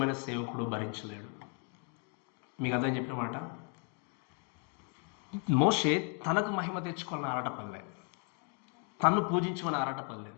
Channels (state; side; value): quieter; right; 39.9 dB